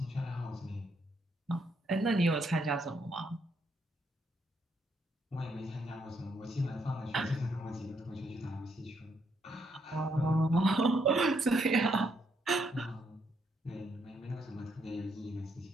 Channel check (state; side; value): normal; both; correlation 0.75